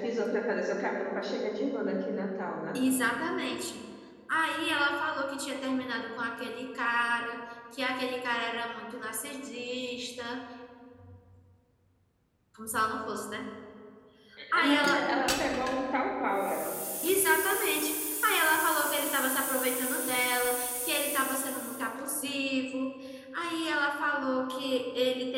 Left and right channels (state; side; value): identical; both; correlation 1.00